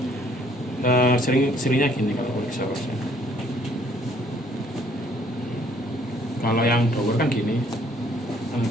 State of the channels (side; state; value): both; normal; correlation 0.62